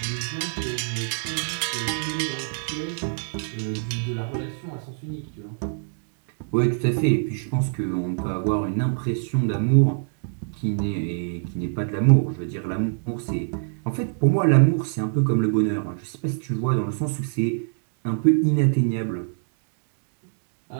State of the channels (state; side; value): silent; left; digital silence